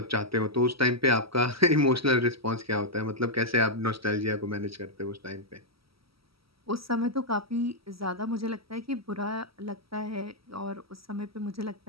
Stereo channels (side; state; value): left; late; 0.75 ms